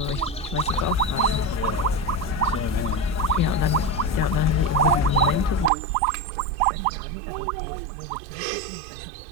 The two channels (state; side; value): drops out; left; at 5.7 s